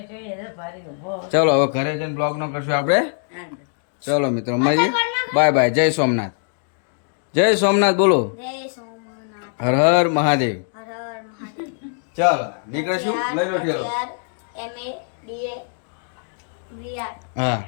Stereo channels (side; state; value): right; silent; digital silence